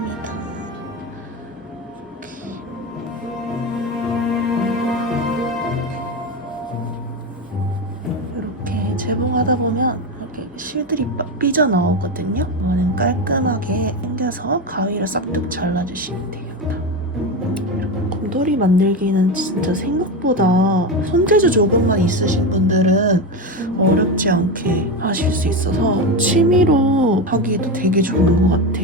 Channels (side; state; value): both; normal; correlation 0.17